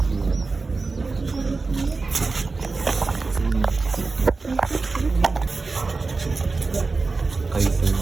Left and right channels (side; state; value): left; quieter; 3.9 dB